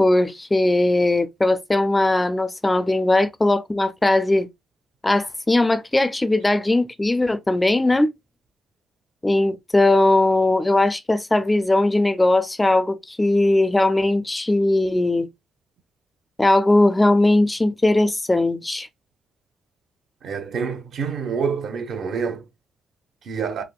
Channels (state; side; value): normal; both; correlation 0.97